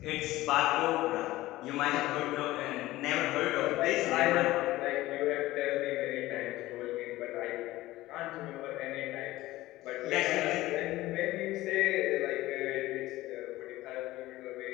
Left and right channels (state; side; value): quieter; right; 17.2 dB